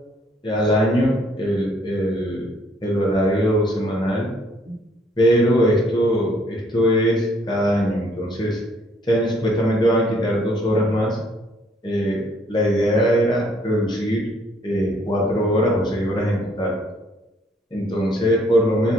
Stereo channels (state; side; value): normal; both; correlation 0.64